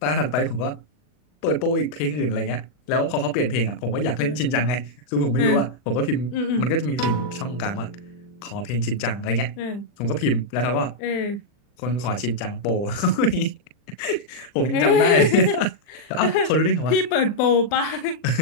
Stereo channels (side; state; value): right; late; 40 ms